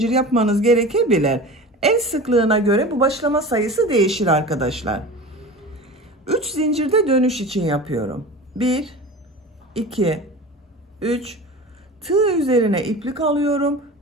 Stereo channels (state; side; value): normal; both; correlation 0.34